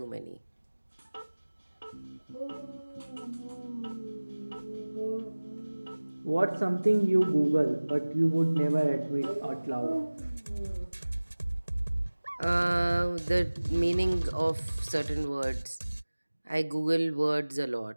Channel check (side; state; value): both; inverted; correlation -1.00